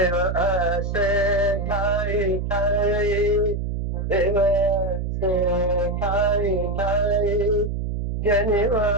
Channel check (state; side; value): noise; right; hum, 2 dB below the sound